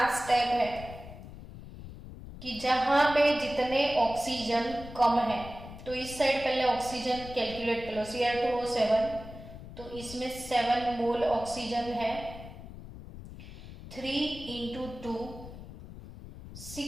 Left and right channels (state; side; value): noise; left; rumble, 14 dB below the sound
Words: स्टेप है कि जहां पे जितने ऑक्सीजन कम है, तो इस साइड पहले ऑक्सीजन कैलकुलेट कर लो, Cr2O7, तो इसमें 7 मोल ऑक्सीजन है, 3 into 2